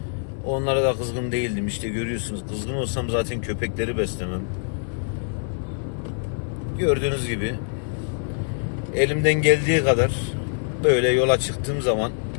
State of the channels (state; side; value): silent; right; 62 dB below the other